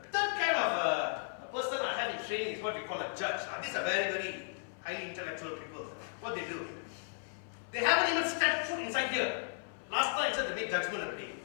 third kind of a person I have in training is what we call a judge. These are very, very highly intellectual people. What they do? They haven't even stepped foot inside here. Last time I said they made judgment already.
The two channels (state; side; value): silent; right; 54 dB below the other